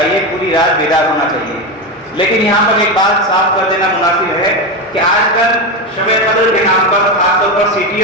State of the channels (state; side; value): normal; both; correlation 0.15